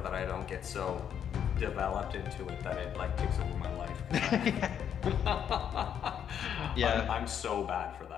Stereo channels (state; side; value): quieter; right; 8.8 dB